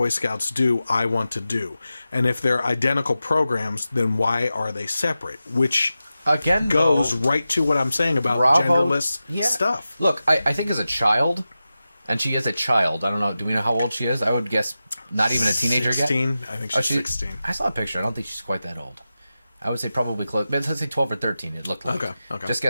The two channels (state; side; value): inverted; both; correlation -0.93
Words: Scouts do, I want to do. And if they're identical programs, then why are they separate? Which again goes right to what I'm saying about genderless stuff. Look, I think as a child, and she is a child. I don't know. Do we know how old she is? I would guess not even a teenager 16. yet. I think she's 16. I saw a picture. I don't think she's quite that old. I would say probably close. Let's say 12 or 13. It looked like. Okay. Just